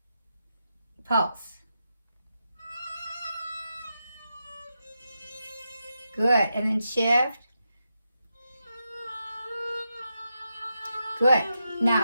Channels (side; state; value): both; inverted; correlation -0.86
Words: pulse. Good. And then shift. Good.